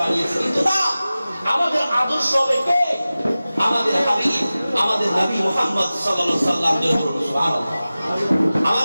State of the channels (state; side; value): inverted; both; correlation -0.96